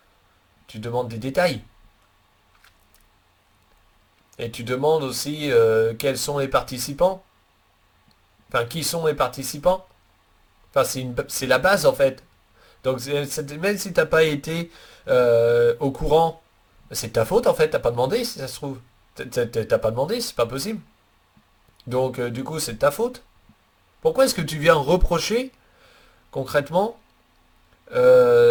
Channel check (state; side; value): identical; both; correlation 1.00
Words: tu demandes des détails. Et tu demandes aussi quels sont les participants. Enfin, qui sont les participants. Enfin, c'est la base en fait. Donc même si t'as pas été au courant, c'est ta faute en fait, t'as pas demandé si ça se trouve. T'as pas demandé, c'est pas possible. Donc du coup, c'est de ta faute. Pourquoi est-ce que tu viens reprocher concrètement